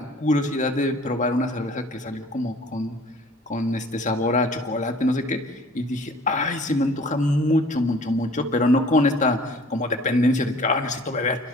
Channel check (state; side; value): normal; both; correlation 0.50